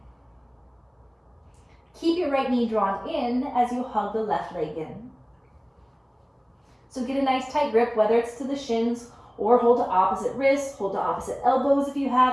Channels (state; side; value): identical; both; correlation 1.00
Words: Keep your right knee drawn in as you hug the left leg in. So get a nice tight grip, whether it's to the shins or hold to opposite wrists, hold to opposite elbows if you